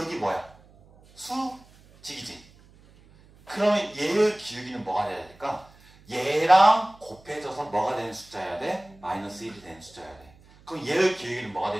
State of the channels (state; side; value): noise; right; hum, 26 dB below the sound